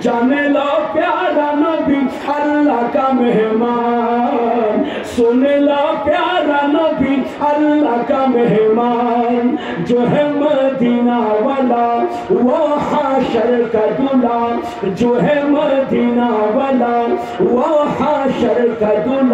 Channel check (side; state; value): both; identical; correlation 1.00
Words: जाने लो प्यारा नबी अल्लाह का मेहमान, सुन लो प्यारा नबी अल्लाह का मेहमान, जो है मदीना वाला वो हाशर का दूल्हा, जो है मदीना वाला वो हाशर का